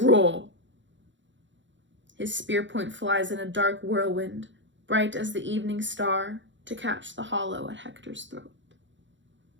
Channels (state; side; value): late; left; 0.54 ms